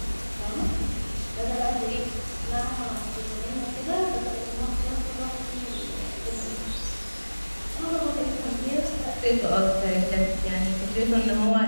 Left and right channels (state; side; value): inverted; both; correlation -1.00